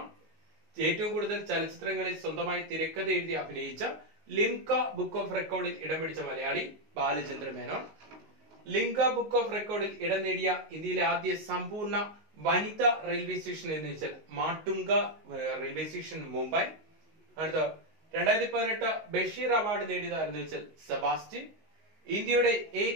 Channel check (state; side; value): late; left; 19 ms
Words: ഏറ്റവും കൂടുതൽ ചലച്ചിത്രങ്ങളിൽ സ്വന്തമായി തിരക്കഥ എഴുതി അഭിനയിച്ച ലിംക ബുക്ക് ഓഫ് റെക്കോർഡിൽ ഇടം പിടിച്ച മലയാളി ബാലചന്ദ്ര മേനോൻ. ലിംക ബുക്ക് ഓഫ് റെക്കോർഡിൽ ഇടം നേടിയ ഇന്ത്യയിലെ ആദ്യ സമ്പൂർണ്ണ വനിതാ റെയിൽവേ സ്റ്റേഷൻ എന്ന് വെച്ചാൽ മാട്ടുങ്ക റെയിൽവേ സ്റ്റേഷൻ, മുംബൈ. അടുത്ത, 2018 ബഷീർ അവാർഡ് നേടിയതാരെന്ന് വെച്ചാൽ സെബാസ്റ്റ്യൻ. ഇന്ത്യയുടെ